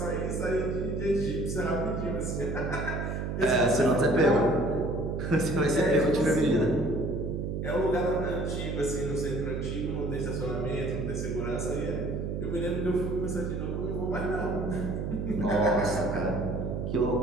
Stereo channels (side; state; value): right; noise; hum, 3 dB below the sound